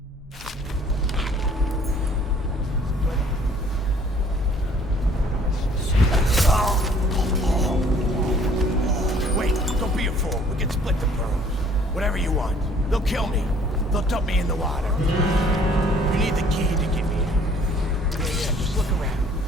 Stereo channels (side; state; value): both; normal; correlation 0.57